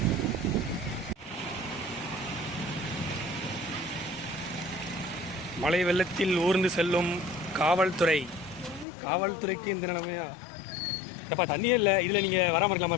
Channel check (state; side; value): drops out; right; at 8.8 s